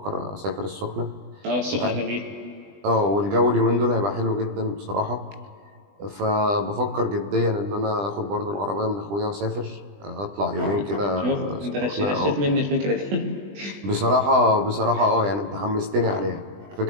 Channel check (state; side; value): late; left; 20 ms